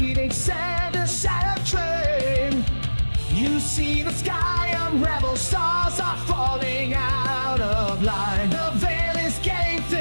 sand and shattered train. You see the sky unravel, stars are falling out of line. The veil is getting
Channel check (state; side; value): inverted; both; correlation -1.00